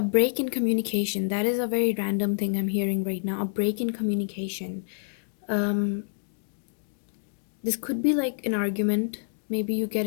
break in communication, that is a very random thing I'm hearing right now. A break in communication. This could be like an argument maybe you get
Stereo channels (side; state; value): right; silent; digital silence